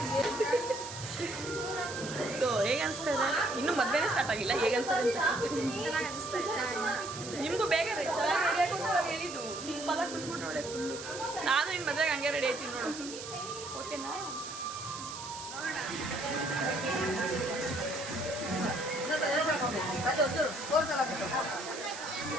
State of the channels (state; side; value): noise; right; hiss, 10 dB below the sound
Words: ಸೊ ಹೇಗೆ ಅನಿಸ್ತಾ ಇದೆ? ಇನ್ನೂ ಮದುವೆನೇ ಸ್ಟಾರ್ಟ್ ಆಗಿಲ್ಲ, ಹೇಗೆ ಅನಿಸ್ತದೆ ಅಂತ? ಚೆನ್ನಾಗಿ ಅನಿಸ್ತಾ ಇತ್ತು. ನಿಮಗೂ ಬೇಗ ರೀ ಚೆನ್ನಾಗಿ ರೆಡಿ ಹಾಕೊಂಡು ಹೇಳಿದ್ದು, ಸಿಂಪಲಾಗಿ ಬಿಟ್ಬಿಟ್ಟು ಒಳ್ಳೆ ಫುಲ್ಲು. ನಾನು ಇನ್ನು ಮದುವೆಗೆ ಹಂಗೆ ರೆಡಿ ಆಯ್ತೀನಿ ನೋಡು, ಓಕೆನಾ?